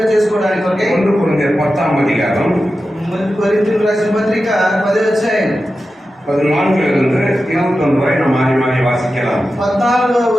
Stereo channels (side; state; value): both; normal; correlation 0.92